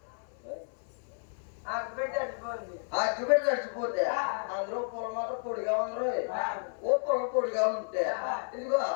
అగ్గిపెట్టి అడిచిపోతే అందులో పొల మాత్రం పొడిగా ఉందరు ఓ పొల పొడిగా ఉంటే ఇదిగో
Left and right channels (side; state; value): right; silent; 57 dB below the other